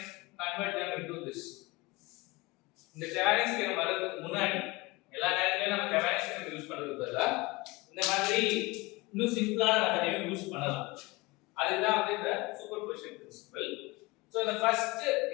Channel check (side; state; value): right; quieter; 23.3 dB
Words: convert them into this இந்த Thevenin's தியரம் வரதுக்கு முன்னாடி எல்லா நேரத்துலயும் நம்ம Thevenin's தியரம் யூஸ் பண்றதுக்கு பதிலா இந்த மாதிரி இன்னும் சிம்பிளான மெத்தடையும் யூஸ் பண்ணலாம் அதுதான் வந்து இந்த superposition principle So the first